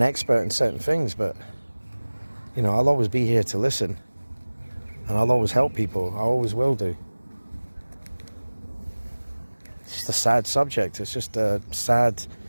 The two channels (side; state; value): both; inverted; correlation -1.00